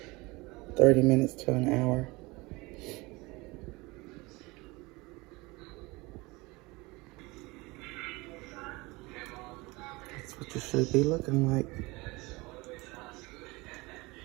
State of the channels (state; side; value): quieter; left; 23.5 dB